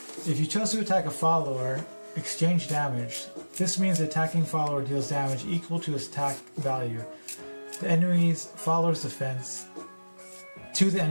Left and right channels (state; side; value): inverted; both; correlation -1.00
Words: If you chose to attack a follower, exchange damage. This means the attacking follower deals damage equal to its attack value. The enemy's follower's defense to the